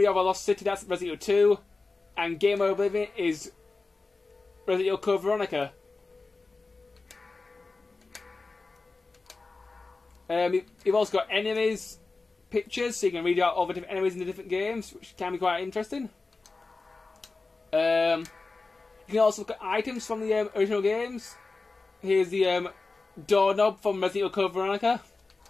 of a Lost City, that's Resident Evil 2, and Game of Oblivion is Resident Evil Code Veronica. You've also got enemies pictures, so you can read out all the different enemies in the different games, which can be quite interesting. You can also look at items from the original games. Here's the doorknob from Resident Evil Code Veronica.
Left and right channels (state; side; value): quieter; right; 3.7 dB